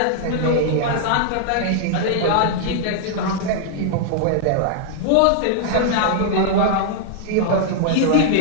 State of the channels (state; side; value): different; both; correlation -0.01